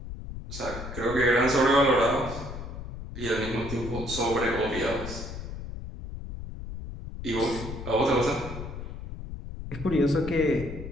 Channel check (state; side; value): noise; left; rumble, 9 dB below the sound